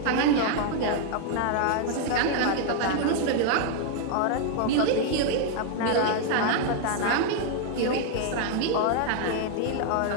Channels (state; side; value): different; both; correlation 0.00